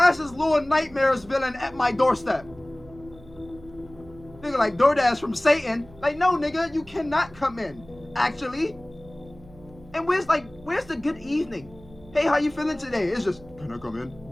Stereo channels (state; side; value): noise; right; hum, 22 dB below the sound